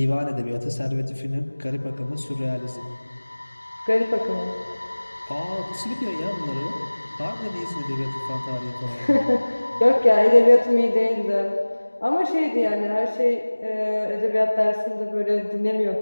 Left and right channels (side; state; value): both; inverted; correlation -1.00